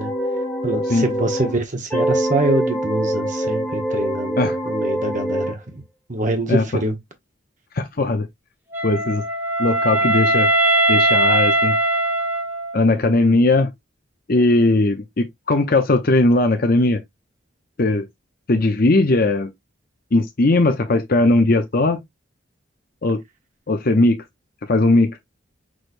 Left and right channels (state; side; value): normal; both; correlation 0.41